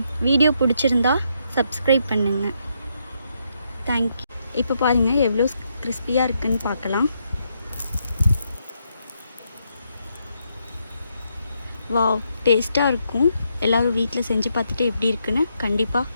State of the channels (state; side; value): inverted; both; correlation -0.78